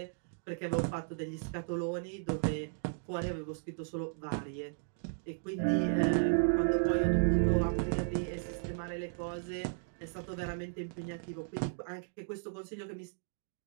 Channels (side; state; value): left; silent; digital silence